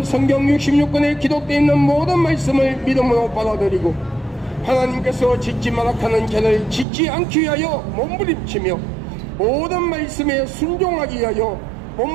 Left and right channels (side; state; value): left; drops out; at 6.9 s